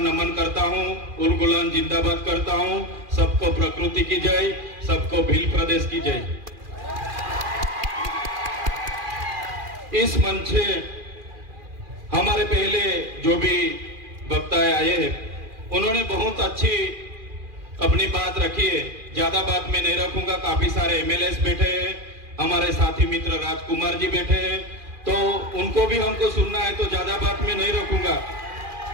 करता हूँ, उलगुलान जिंदाबाद करता हूँ। सबको प्रकृति की जय, सबको भील प्रदेश की जय। इस मंच से हमारे पहले जो भी वक्ता आए हैं उन्होंने बहुत अच्छी अपनी बात रखी है। ज्यादा बात मैं नहीं रखूंगा। काफी सारे एमएलएस बैठे हैं, हमारे साथी मित्र राजकुमार जी बैठे हैं, तो उनको भी हमको सुनना है, तो ज्यादा बात मैं नहीं रखूंगा।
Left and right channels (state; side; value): late; left; 2.4 ms